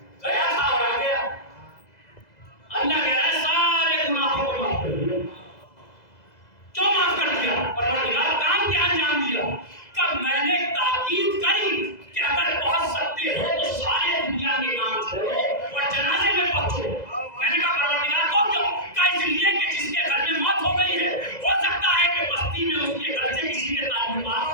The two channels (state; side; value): late; right; 2.0 ms